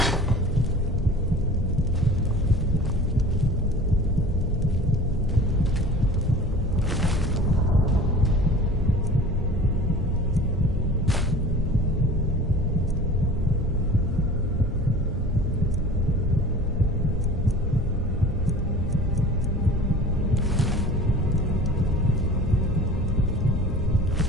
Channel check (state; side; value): normal; both; correlation 0.41